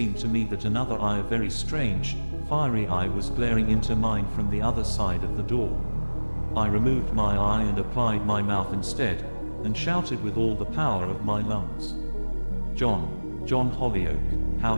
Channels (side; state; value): both; inverted; correlation -1.00